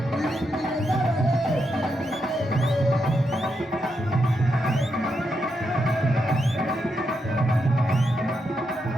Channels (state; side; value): normal; both; correlation 0.83